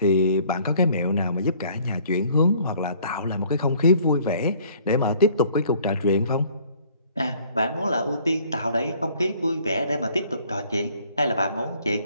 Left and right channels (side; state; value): both; inverted; correlation -0.57